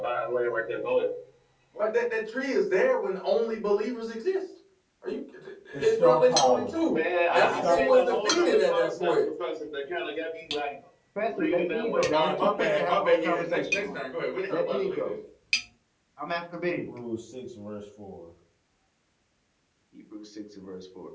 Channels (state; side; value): identical; both; correlation 1.00